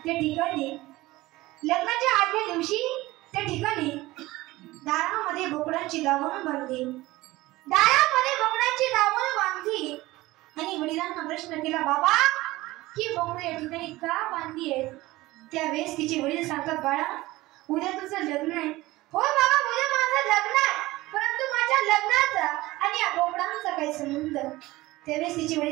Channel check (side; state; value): left; quieter; 18.8 dB